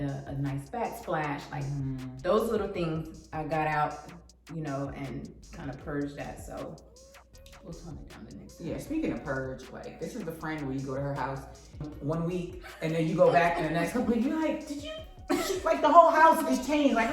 nice backsplash. Like those little things I got out, you know, and kind of purged that. So we'll tone it down the next time. Yeah, speaking of purge, like this is the friend where you go to her house 1 week and then you go back in the next couple weeks, you're like, did you, like the whole house is changed. Like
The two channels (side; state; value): both; identical; correlation 1.00